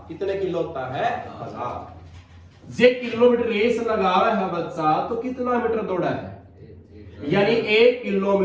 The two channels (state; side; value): identical; both; correlation 1.00